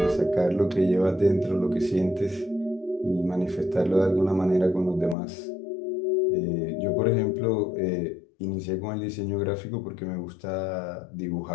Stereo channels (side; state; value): right; drops out; at 5.2 s